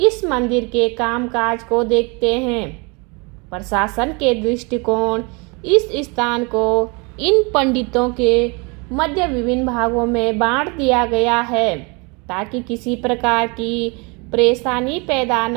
मंदिर के कामकाज को देखते हैं। प्रशासन के दृष्टिकोण इस स्थान को इन पंडितों के मध्य विभिन्न भागों में बांट दिया गया है, ताकि किसी प्रकार की परेशानी पैदा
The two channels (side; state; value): left; quieter; 30.1 dB